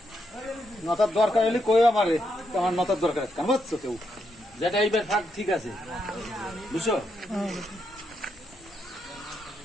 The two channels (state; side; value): normal; both; correlation 0.80